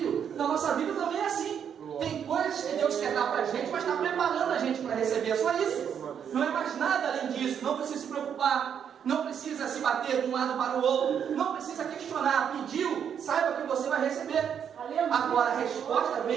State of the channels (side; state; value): left; quieter; 8.2 dB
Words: Na nossa vida também é assim. Tem coisas que Deus quer dar para a gente, mas está preparando a gente para receber. É só isso. Não é mais nada além disso. Não precisa se preocupar. Não precisa se bater de um lado para o outro. Não precisa questionar. Pediu, saiba que você vai receber. Agora a resposta